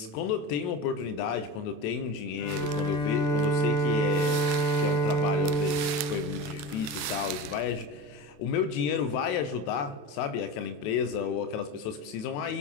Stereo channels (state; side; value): late; right; 27 ms